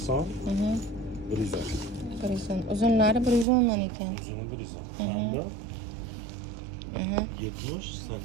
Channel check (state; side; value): drops out; left; at 3.5 s